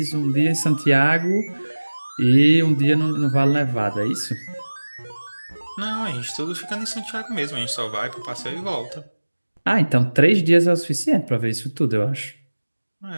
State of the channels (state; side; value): inverted; both; correlation -1.00